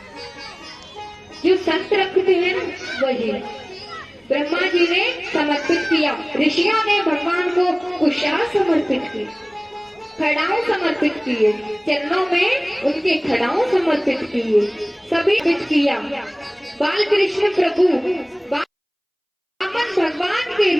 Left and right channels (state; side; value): identical; both; correlation 1.00